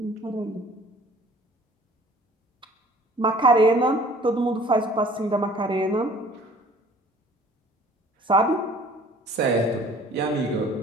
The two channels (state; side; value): normal; both; correlation 0.52